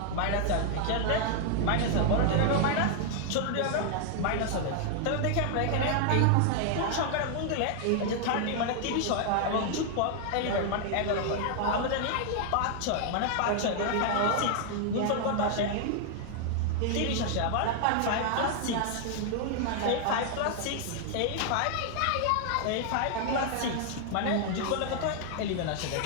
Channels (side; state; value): both; different; correlation 0.00